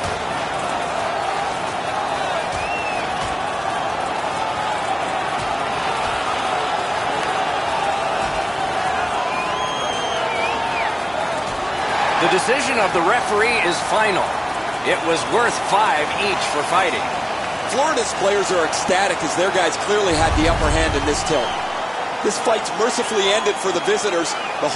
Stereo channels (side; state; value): both; identical; correlation 1.00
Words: The decision of the referee is final. It was worth 5 each for fighting. Florida's players are ecstatic as their guys clearly had the upper hand in this tilt. This fight's mercifully ended for the visitors. The